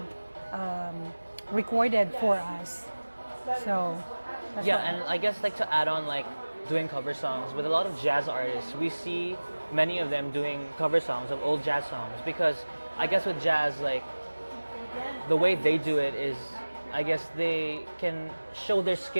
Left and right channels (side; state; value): both; inverted; correlation -1.00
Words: recorded for us. So that's Yeah, why- and I guess like to add on like doing cover songs with a lot of jazz artists, we see many of them doing cover songs of old jazz songs because I guess with jazz like the way they do it is I guess they can show their